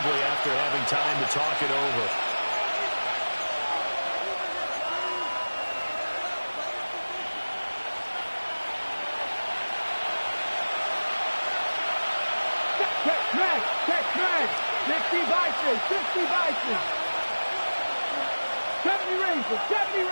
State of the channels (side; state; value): both; inverted; correlation -1.00